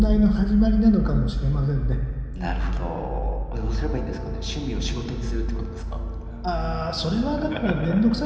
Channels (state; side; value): identical; both; correlation 1.00